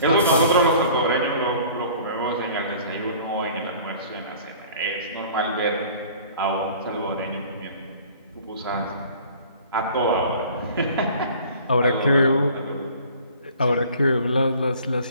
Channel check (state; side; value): inverted; both; correlation -0.48